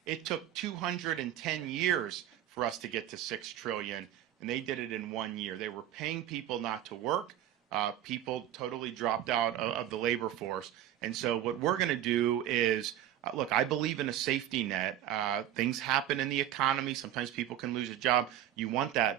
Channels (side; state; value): left; quieter; 11.7 dB